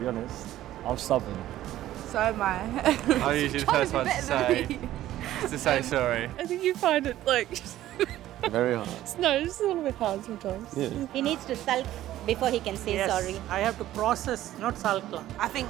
honest. I'm stubborn. So am I. I'm usually the first one to say sorry. I think you find it like... Very hard. No, it's a little bit hard sometimes. Yeah. He needs to sulk before he can say sorry. I have to process, not sulk. I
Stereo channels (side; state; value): left; quieter; 13.8 dB